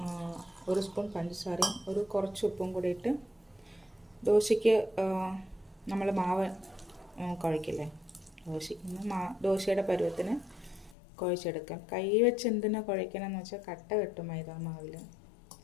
1 സ്പൂൺ പഞ്ചസാരയും കുറച്ച് ഉപ്പും കൂടി ഇട്ട് ദോശയ്ക്ക് നമ്മൾ മാവ് കുഴക്കില്ലേ, ദോശയുടെ പരുവത്തിന് കുഴച്ചെടുക്കാം. കൈ വെച്ച് എന്തിനാ കുഴക്കണമെന്ന് വെച്ചാൽ കട്ട കെട്ടും മൈദ മാവിൽ,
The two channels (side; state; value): right; drops out; at 11.0 s